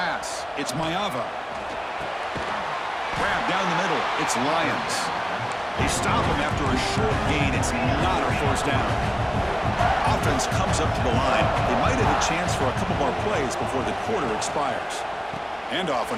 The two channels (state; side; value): identical; both; correlation 1.00